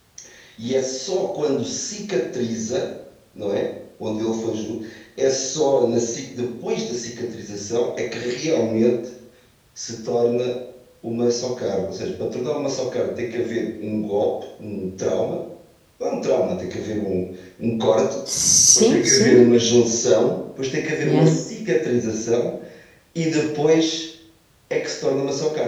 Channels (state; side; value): identical; both; correlation 1.00